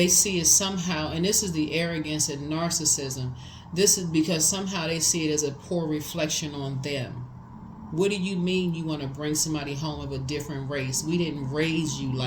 see it somehow, and this is the arrogance and narcissism. This is because somehow they see it as a poor reflection on them. What do you mean you want to bring somebody home of a different race? We didn't raise you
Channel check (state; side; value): identical; both; correlation 1.00